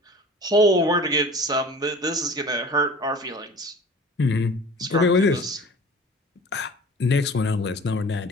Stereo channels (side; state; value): both; normal; correlation 0.42